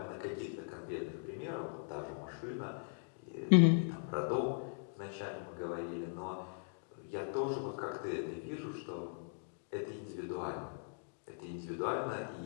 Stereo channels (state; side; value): silent; right; digital silence